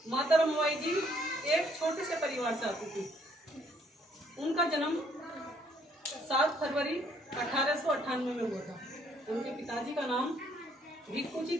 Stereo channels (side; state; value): both; normal; correlation 0.66